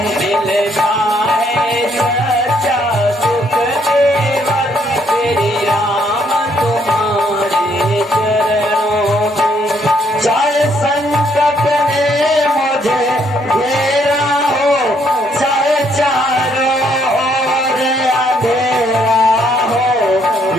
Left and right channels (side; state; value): both; normal; correlation 0.69